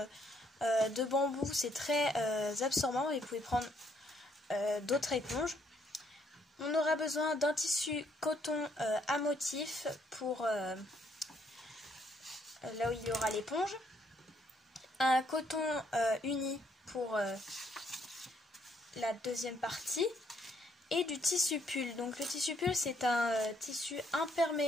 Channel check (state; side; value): normal; both; correlation 0.70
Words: de bambou, c'est très absorbant et vous pouvez prendre d'autres éponges. On aura besoin d'un tissu coton à motif pour là où il y aura l'éponge, un coton uni pour la deuxième partie et du tissu pull. Donc le tissu pull c'est un tissu